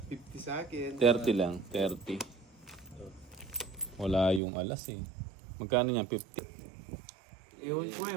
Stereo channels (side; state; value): left; drops out; at 4.4 s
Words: 50 sa akin. 30 lang, 30. Wala yung alas eh. Magkano yan? 50. Ewan ko eh,